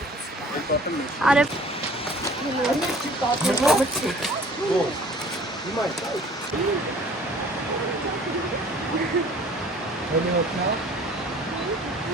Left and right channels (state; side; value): normal; both; correlation 0.50